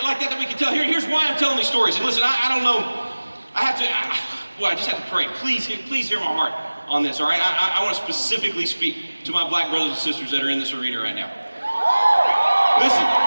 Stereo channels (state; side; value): inverted; both; correlation -1.00